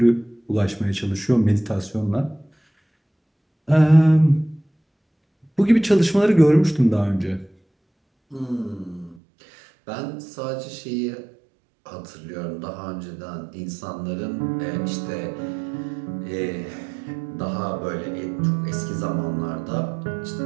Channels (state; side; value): drops out; left; at 9.2 s